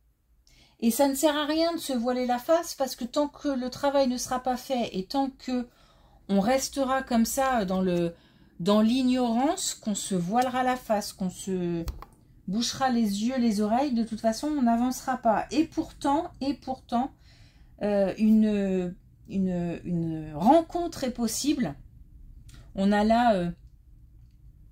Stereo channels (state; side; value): identical; both; correlation 1.00